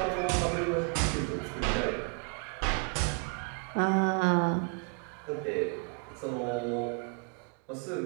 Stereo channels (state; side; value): quieter; left; 36.3 dB